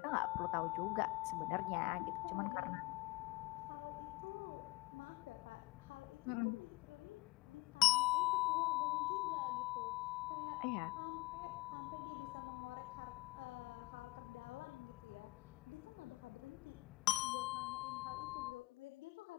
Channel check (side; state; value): right; quieter; 21.2 dB